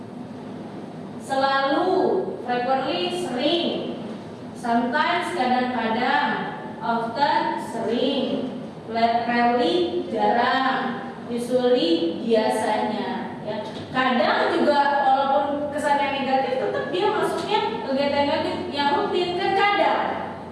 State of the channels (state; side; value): identical; both; correlation 1.00